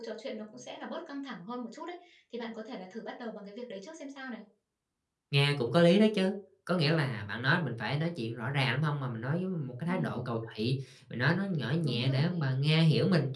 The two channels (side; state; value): both; identical; correlation 1.00